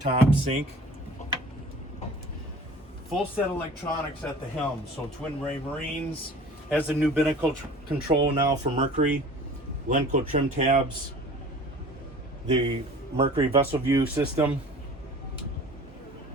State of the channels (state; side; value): normal; both; correlation 0.44